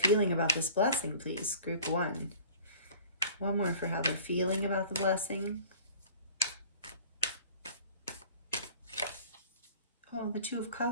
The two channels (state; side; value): inverted; both; correlation -0.47